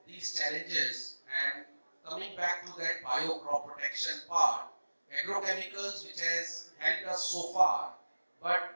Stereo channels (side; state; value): both; inverted; correlation -1.00